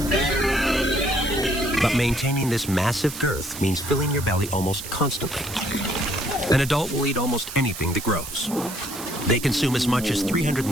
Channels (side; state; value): right; noise; hiss, 10 dB below the sound